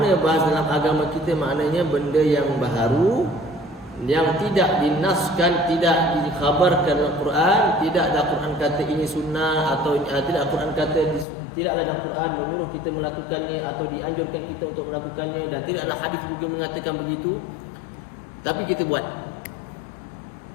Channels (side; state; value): right; drops out; at 11.2 s